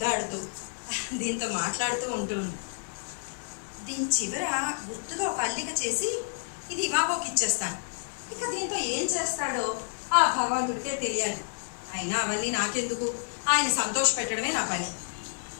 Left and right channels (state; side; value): silent; right; digital silence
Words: దీంతో మాట్లాడుతూ ఉంటుంది. దీని చివర గుర్తుగా ఒక అల్లిక చేసి ఇది ఇవాగోకి ఇచ్చేస్తాను. ఇక దీంతో ఏం చేస్తాడో ఆ భగవంతుడికే తెలియాలి. అయినా అవన్నీ నాకెందుకు, ఆయన సంతోష పెట్టడమే నా పని.